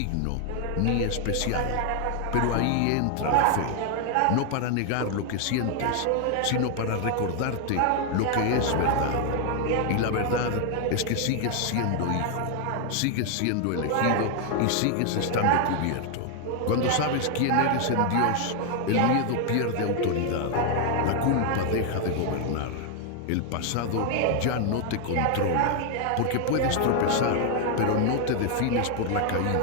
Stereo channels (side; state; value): both; different; correlation 0.00